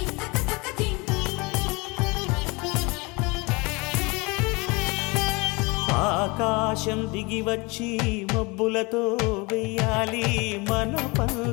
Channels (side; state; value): right; quieter; 26.6 dB